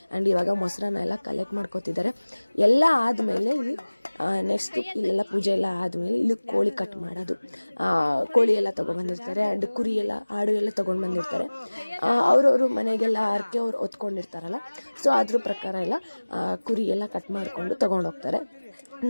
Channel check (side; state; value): both; inverted; correlation -1.00